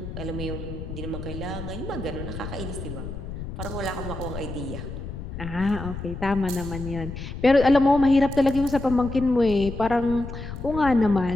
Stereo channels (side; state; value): left; noise; rumble, 8 dB below the sound